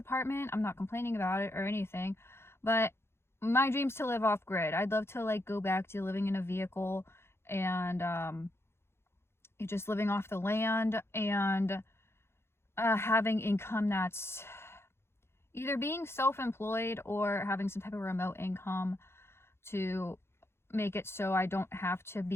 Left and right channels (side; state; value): right; late; 0.12 ms